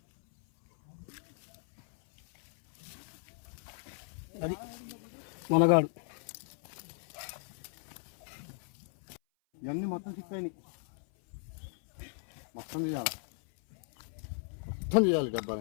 అది మనగాడు. ఇవన్నీ మొత్తం చిక్కాయి. మొత్తం తీయాలి, మొత్తం తీయాలి.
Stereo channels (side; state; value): right; silent; 54 dB below the other